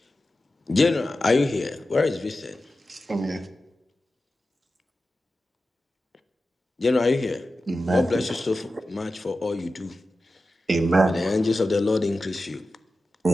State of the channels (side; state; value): both; normal; correlation 0.93